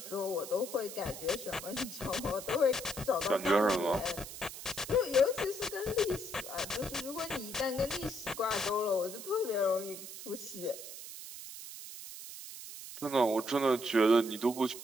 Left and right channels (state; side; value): noise; right; hiss, 11 dB below the sound